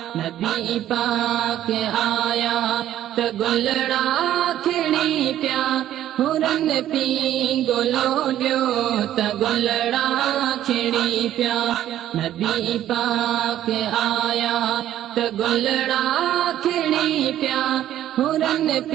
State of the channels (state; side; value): quieter; left; 12.2 dB